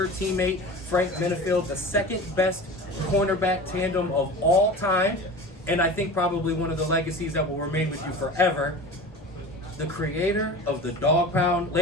teammate, Frank Benefield, the second best cornerback tandem of all time, and I think probably one of the legacies that will remain with you forever. The creator of the Dog Pound,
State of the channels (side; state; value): both; normal; correlation 0.34